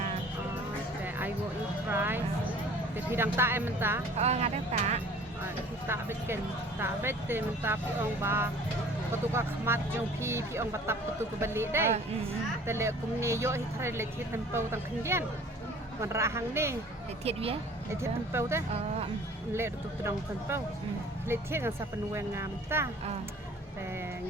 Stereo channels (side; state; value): both; normal; correlation 0.49